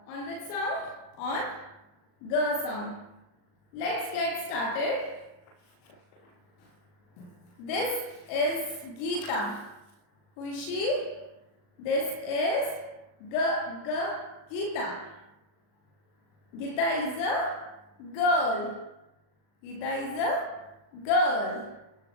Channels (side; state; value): right; late; 39 ms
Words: On which sound? On G sound. Let's get started. This is Geeta. Who is she? This is Geeta. Geeta is a girl. Geeta is a girl.